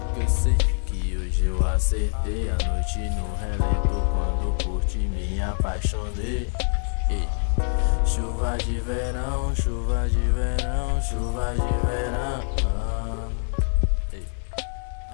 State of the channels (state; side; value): silent; right; 62 dB below the other